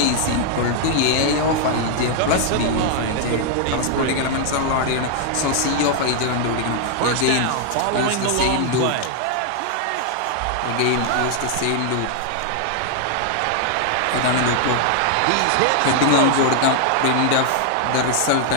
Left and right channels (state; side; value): different; both; correlation 0.00